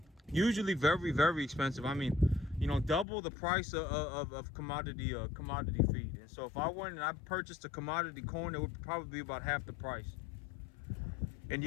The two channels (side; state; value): right; drops out; at 3.1 s